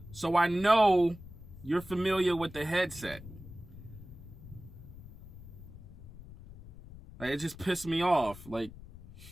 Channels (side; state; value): left; noise; rumble, 16 dB below the sound